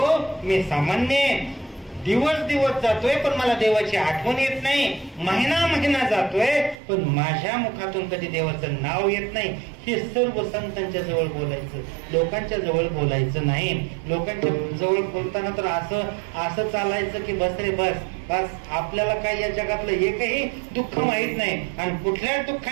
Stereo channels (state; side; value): drops out; left; at 6.8 s